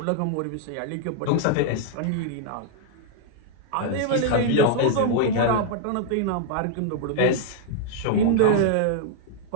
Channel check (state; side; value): different; both; correlation 0.00